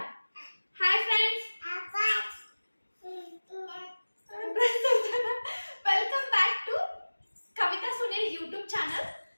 Hi friends, welcome back to Kavita Sunil YouTube channel.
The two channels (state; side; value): inverted; both; correlation -1.00